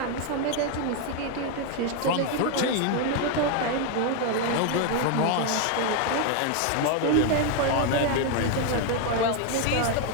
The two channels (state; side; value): different; both; correlation 0.01